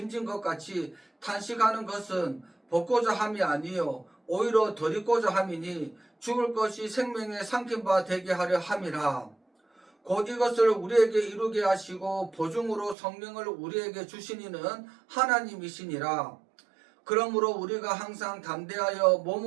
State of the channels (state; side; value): drops out; left; at 13.0 s